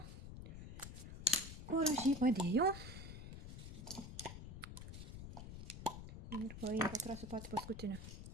Kur aš jį padėjau. Ir pakrasiu patį paskutinį.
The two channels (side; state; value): left; noise; rumble, 9 dB below the sound